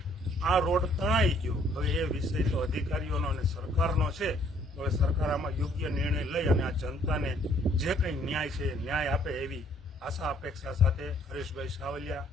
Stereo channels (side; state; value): both; normal; correlation 0.63